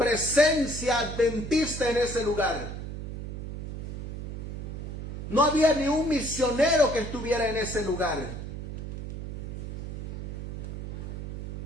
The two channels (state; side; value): noise; right; hum, 7 dB below the sound